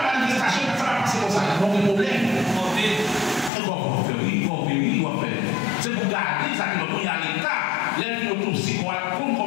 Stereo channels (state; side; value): drops out; right; at 3.5 s